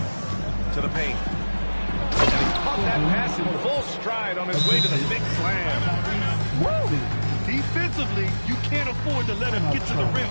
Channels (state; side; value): inverted; both; correlation -1.00